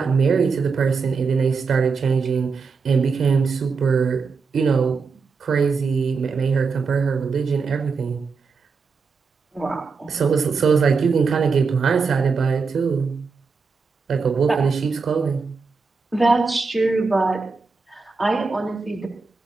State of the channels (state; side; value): quieter; left; 4.9 dB